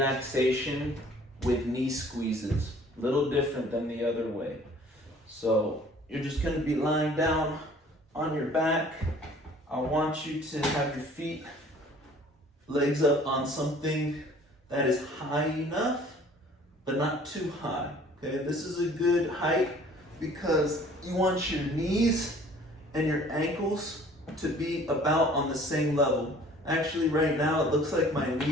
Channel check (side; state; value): both; normal; correlation 0.52